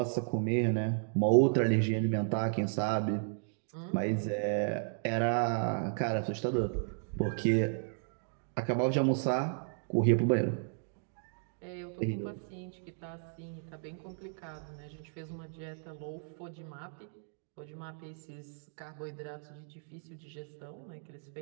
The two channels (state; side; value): silent; left; digital silence